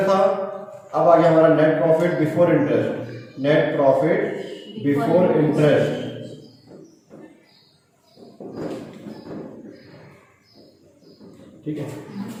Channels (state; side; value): identical; both; correlation 1.00